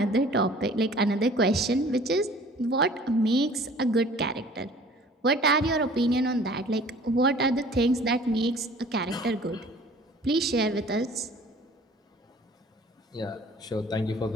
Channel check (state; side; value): normal; both; correlation 0.50